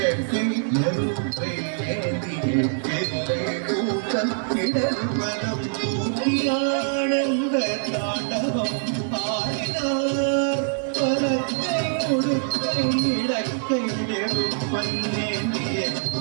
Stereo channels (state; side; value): silent; left; 62 dB below the other